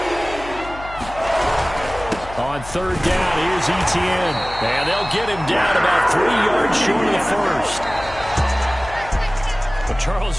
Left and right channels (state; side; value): noise; left; hum, 14 dB below the sound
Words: On 3rd down, here's Etienne. And they'll get him down about 3 yards short of the first. But,